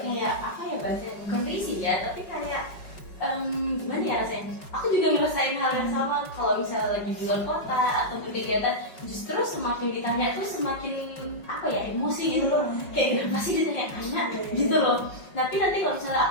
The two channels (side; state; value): right; late; 5.4 ms